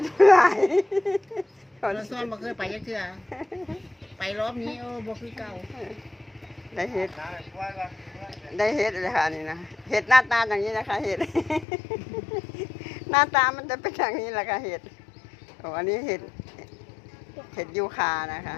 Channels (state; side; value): drops out; right; at 11.7 s